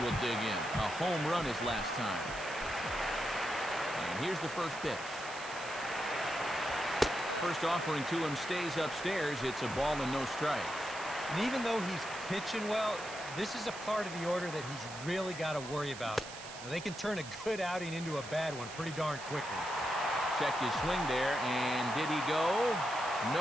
dig in. A home run his last time. And here's the first pitch. First offering to him stays upstairs. It's a ball and no strikes. And even though he's pitching well, this is a part of the order that he's really got to worry about. Now, they can turn a good outing into a bad one pretty darn quickly. Checked his swing there, and did he go?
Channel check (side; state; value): right; noise; hiss, 13 dB below the sound